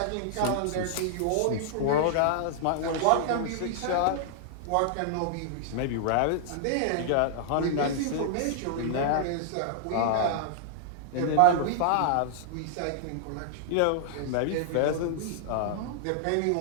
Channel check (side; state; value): both; different; correlation -0.01